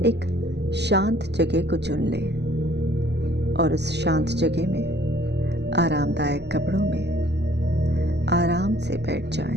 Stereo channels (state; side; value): late; left; 0.50 ms